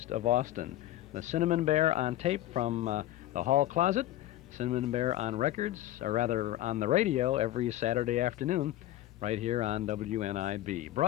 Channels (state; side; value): quieter; right; 14.5 dB